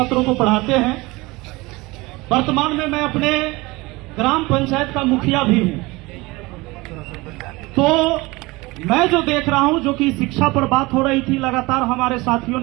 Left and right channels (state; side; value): quieter; left; 22.5 dB